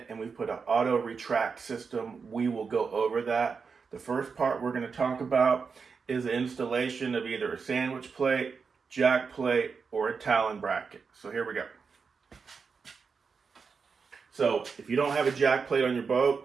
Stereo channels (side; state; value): left; quieter; 5.4 dB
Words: and we've put an auto retract system. We will go over that. The first part we're going to talk about is the installation of either a sandwich plate, jack plate, or a talon bracket. So here we go. So if you don't have a jack plate on your